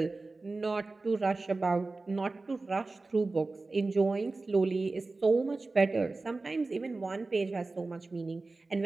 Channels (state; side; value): quieter; left; 3.5 dB